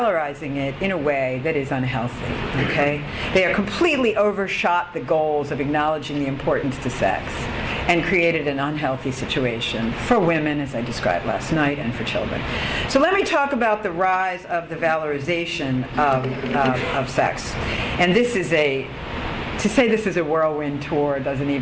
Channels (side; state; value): both; identical; correlation 1.00